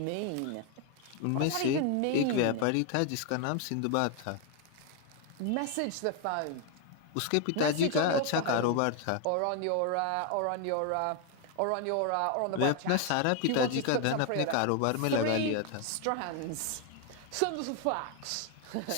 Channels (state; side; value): different; both; correlation 0.01